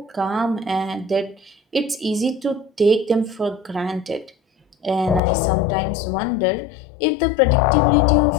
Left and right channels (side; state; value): right; drops out; at 5.2 s